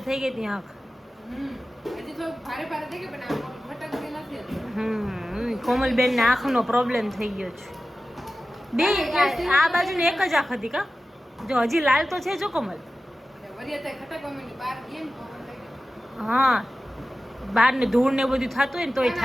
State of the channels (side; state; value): both; normal; correlation 0.95